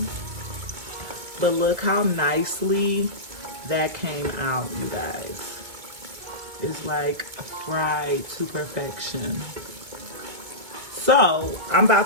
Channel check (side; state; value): left; late; 2.2 ms